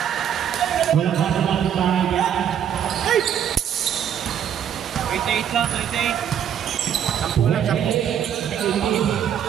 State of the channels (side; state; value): left; quieter; 9.2 dB